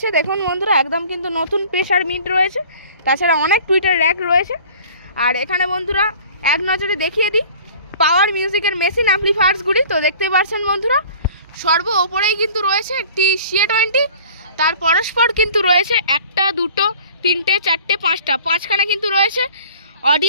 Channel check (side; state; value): both; inverted; correlation -0.47